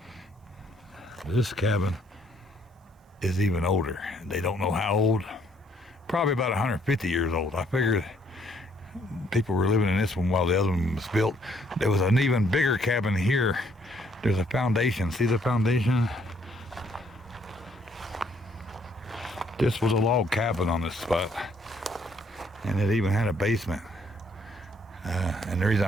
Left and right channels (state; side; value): normal; both; correlation 0.66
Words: This cabin is even older. They don't know how old. Probably about 150 years old. I figured people were living in this one while the other one was built. There was an even bigger cabin here. There's a foundation. See the foundation? This was a log cabin on this spot. And it even had a basement. And the reason